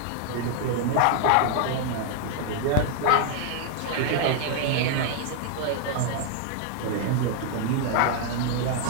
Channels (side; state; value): both; different; correlation 0.00